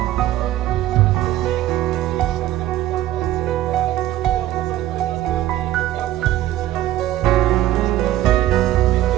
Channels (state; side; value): quieter; left; 14.1 dB